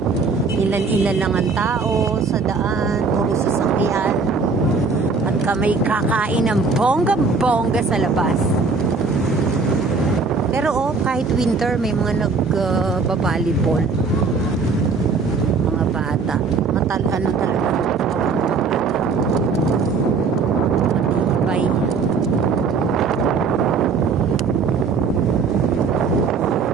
Ilan-ilan lang ang tao sa daan, puro sasakyan. At kami kakain ng bongga-bongga sa labas. Pero kahit winter, may mga nag-volleyball. Mga bata. Ano talaga. Matibay.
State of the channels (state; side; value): quieter; left; 4.6 dB